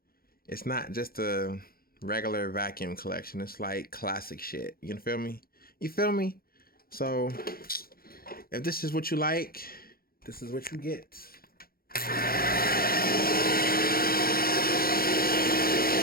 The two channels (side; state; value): right; late; 0.43 ms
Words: it's not just a regular vacuum collection. It's like classic shit. You feel me? You feel me? So if this is what you like, this is what you get.